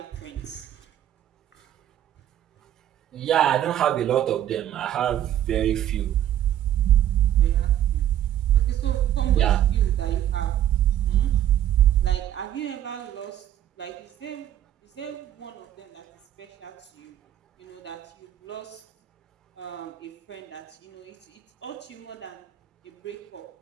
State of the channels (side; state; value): left; quieter; 11.4 dB